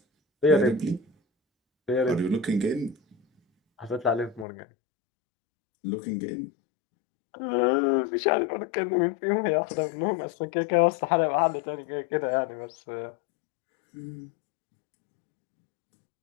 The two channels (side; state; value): right; drops out; at 4.5 s